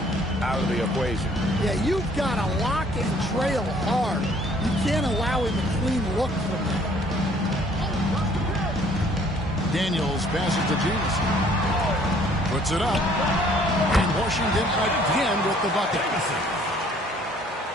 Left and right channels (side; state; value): both; normal; correlation 0.59